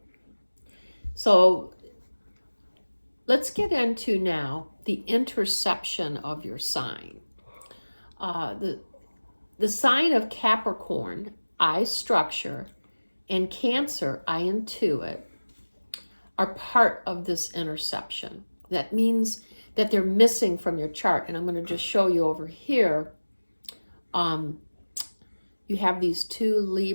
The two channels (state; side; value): inverted; both; correlation -1.00